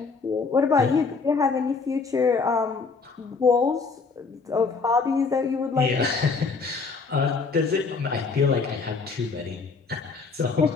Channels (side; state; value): right; quieter; 4.6 dB